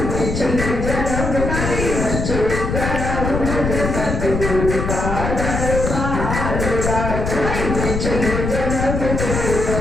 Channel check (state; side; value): noise; left; rumble, 2 dB below the sound